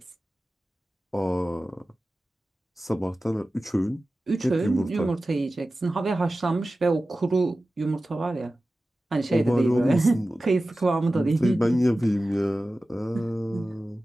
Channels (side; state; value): both; normal; correlation 0.95